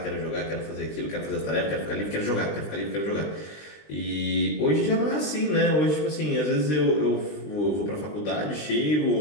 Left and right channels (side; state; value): right; late; 20 ms